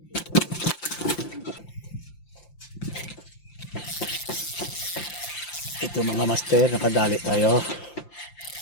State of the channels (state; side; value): late; right; 5.8 ms